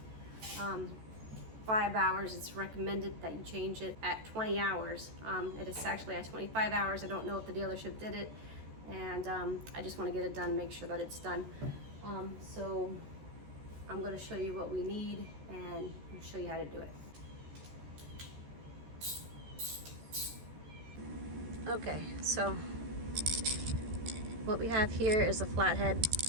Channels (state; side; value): late; left; 14 ms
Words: hours. It's recommended that you change it at 20 hours. It is actually at 25 hours. I don't know if the dealership did it, and I just wanna get it done, make sure that it's done. So I'm gonna show you what we need and show you how to do it. Okay, so what we have here is a flathead,